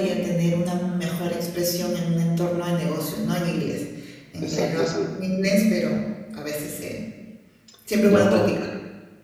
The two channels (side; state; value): both; identical; correlation 1.00